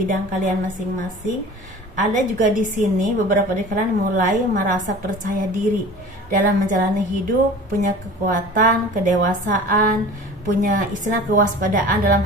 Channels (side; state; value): both; normal; correlation 0.41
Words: kalian masing-masing. Ada juga di sini beberapa dari kalian mulai merasa percaya diri dalam menjalani hidup, punya kekuatan, kedewasaan, punya kewaspadaan dalam